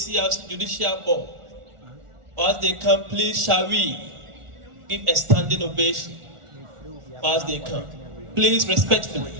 Judicial Board. As they come, please, shall we give a standing ovation as they come? Please,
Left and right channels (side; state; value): left; late; 1.4 ms